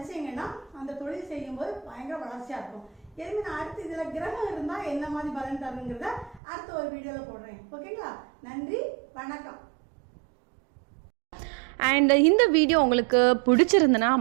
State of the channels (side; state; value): left; drops out; at 6.4 s